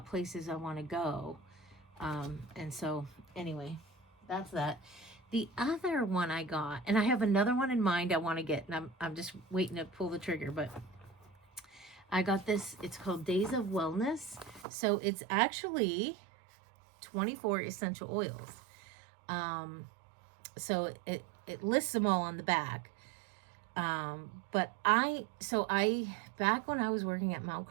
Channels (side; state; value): left; drops out; at 14.7 s